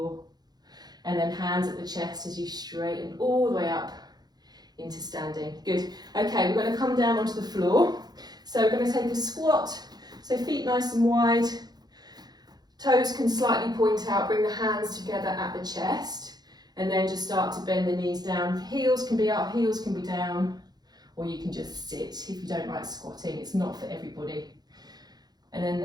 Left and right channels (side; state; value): left; late; 0.19 ms